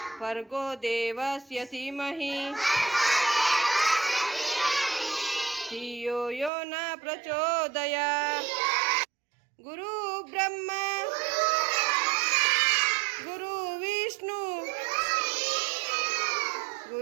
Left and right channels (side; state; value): left; drops out; at 6.5 s